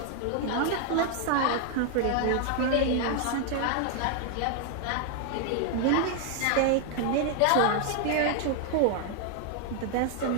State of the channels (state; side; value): different; both; correlation 0.00